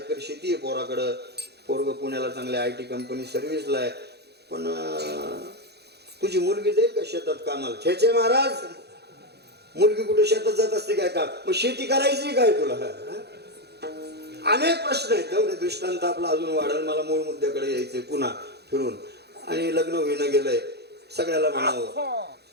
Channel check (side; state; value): left; late; 0.48 ms